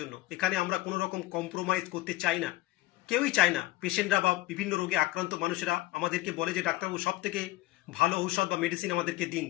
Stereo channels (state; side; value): quieter; right; 17.5 dB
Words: এখানে আমরা কোনো রকম কম্প্রোমাইজ করতে চাই না, কেউই চায় না। পেশেন্টরা বা বিভিন্ন রোগে আক্রান্ত মানুষেরা আমাদেরকে বলে যে ডাক্তারবাবু সব থেকে ভালো ঔষধ বা মেডিসিন আমাদেরকে দিন,